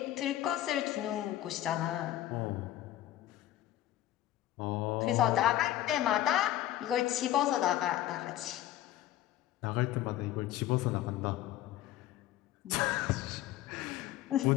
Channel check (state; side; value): quieter; right; 13.5 dB